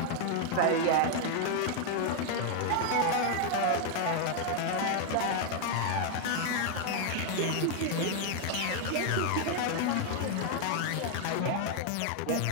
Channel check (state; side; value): different; both; correlation 0.00